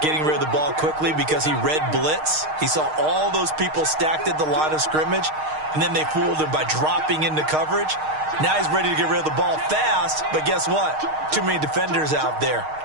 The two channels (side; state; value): left; late; 6.5 ms